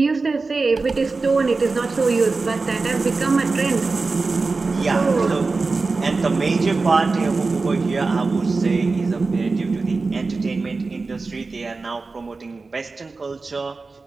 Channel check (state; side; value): quieter; left; 3.9 dB